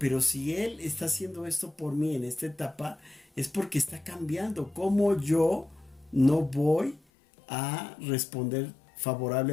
si él está haciendo esto por mí en esta etapa, es porque está cambiando. ¿Cómo yo no voy a responder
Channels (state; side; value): drops out; right; at 7.0 s